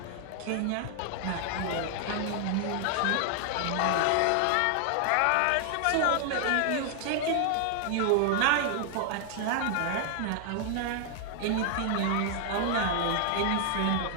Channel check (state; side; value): different; both; correlation 0.00